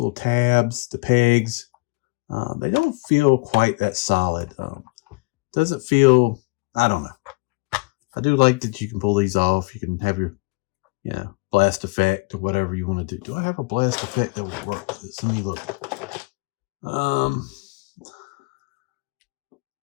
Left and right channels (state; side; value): quieter; right; 27.1 dB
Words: tabs, the pegs. They don't feel quite that solid. Doesn't feel, I don't know. I do like that you can pull these off. You can have your, blast effect or whatever you want to do. Do I have a blast effect that would work with this? Let me look.